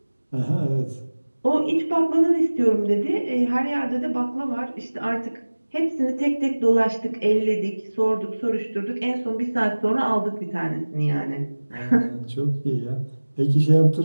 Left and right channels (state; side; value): inverted; both; correlation -1.00